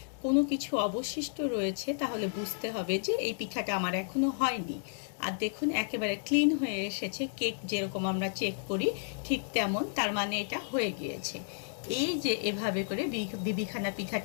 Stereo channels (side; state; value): right; silent; digital silence